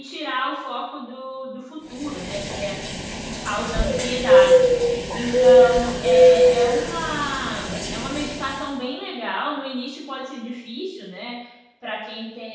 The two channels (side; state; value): both; identical; correlation 1.00